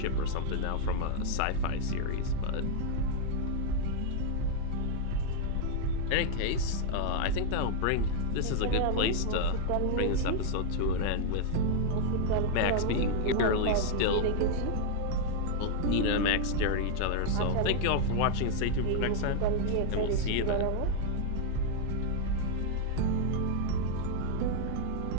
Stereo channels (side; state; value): both; different; correlation 0.00